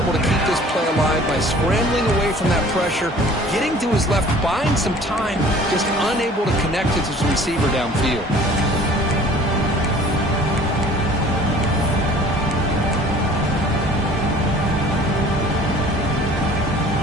to keep this play alive by scrambling away from that pressure, getting to his left, buying some time, just unable to connect with his receiver downfield.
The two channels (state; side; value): normal; both; correlation 0.49